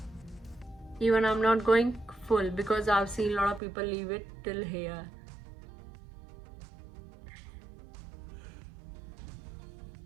Even I'm not going full, because I've seen a lot of people leave it till here.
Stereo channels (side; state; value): left; drops out; at 3.6 s